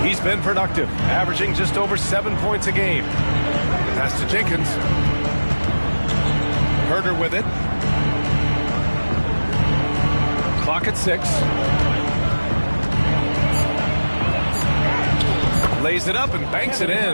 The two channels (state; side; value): inverted; both; correlation -1.00